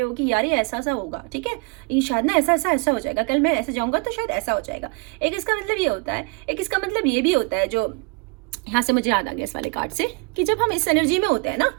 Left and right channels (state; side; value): quieter; left; 32.0 dB